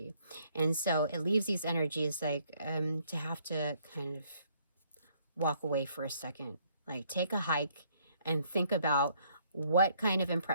And so it leaves these energies like to have to kind of walk away for a second, like take a hike and think about what kind of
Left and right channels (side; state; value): both; inverted; correlation -0.66